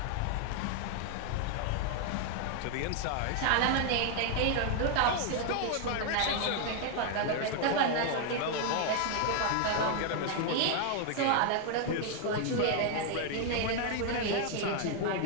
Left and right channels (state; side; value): different; both; correlation 0.00